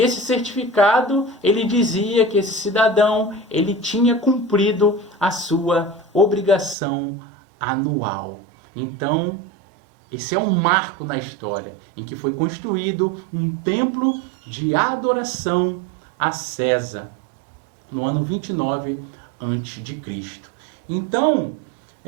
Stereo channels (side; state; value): left; drops out; at 6.8 s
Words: certificado ele dizia que esse cidadão ele tinha cumprido a sua obrigação anual. Então, esse é um marco na história em que foi construído um templo de adoração a César no ano 29 a.C. Então,